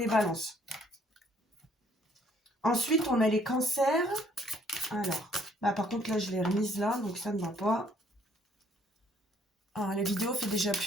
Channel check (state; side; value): normal; both; correlation 0.63